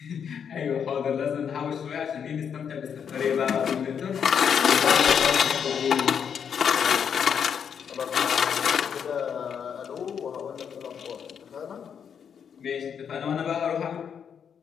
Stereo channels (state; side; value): quieter; right; 7.5 dB